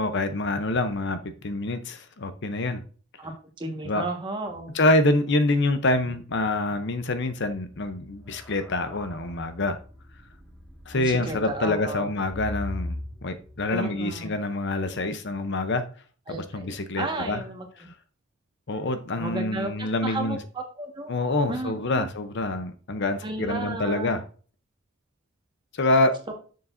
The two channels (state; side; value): normal; both; correlation 0.13